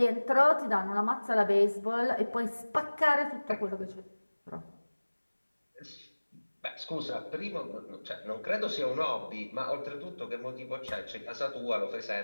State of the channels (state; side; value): inverted; both; correlation -1.00